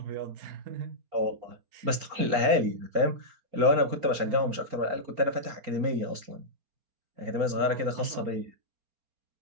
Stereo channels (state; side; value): late; left; 4.3 ms